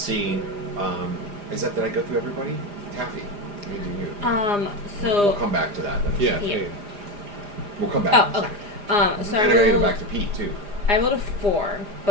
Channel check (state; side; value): late; left; 4.9 ms